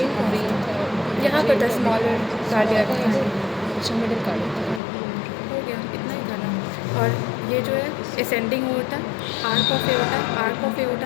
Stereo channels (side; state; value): right; drops out; at 4.8 s